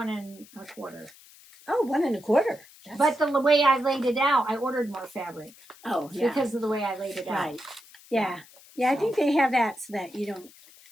1/4. Oh, 1 1/4. But the way I laid it out, I ordered more fabric. Oh, yeah. Because of the way I laid it out. Right. Yeah. Yeah, I think they have that so that you don't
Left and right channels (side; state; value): left; noise; hiss, 23 dB below the sound